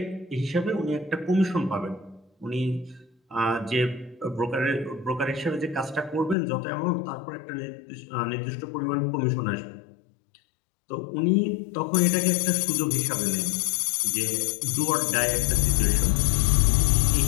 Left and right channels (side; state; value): right; drops out; at 6.4 s